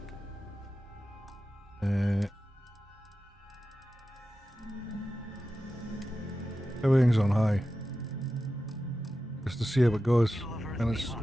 Everything's on high. Just to see how it goes. And it's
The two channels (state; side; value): normal; both; correlation 0.92